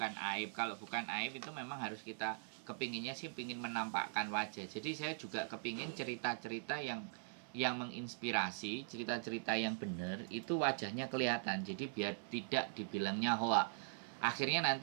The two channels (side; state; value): left; silent; 50 dB below the other